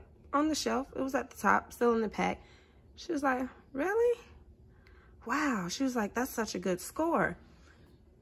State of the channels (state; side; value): identical; both; correlation 1.00